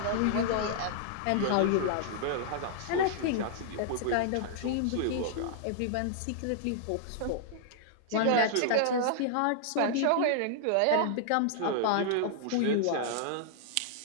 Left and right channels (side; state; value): both; different; correlation -0.01